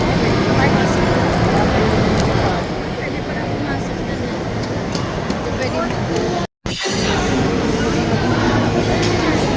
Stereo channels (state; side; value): identical; both; correlation 1.00